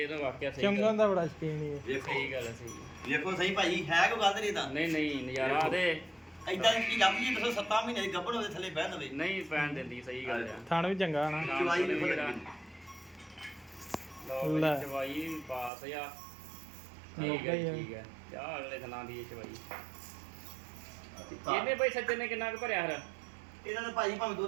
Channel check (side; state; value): left; drops out; at 15.7 s